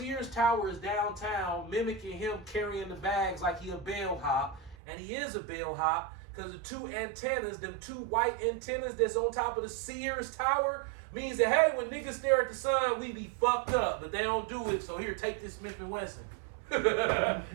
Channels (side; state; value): left; drops out; at 4.8 s